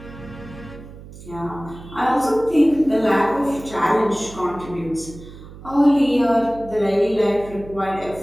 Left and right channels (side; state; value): right; noise; hum, 16 dB below the sound